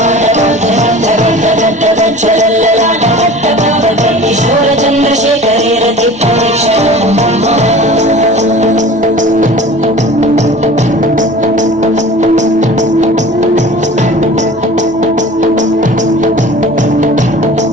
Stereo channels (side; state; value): left; noise; hum, 27 dB below the sound